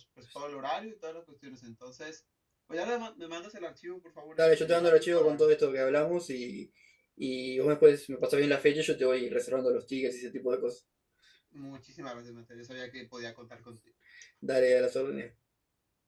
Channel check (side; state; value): both; identical; correlation 1.00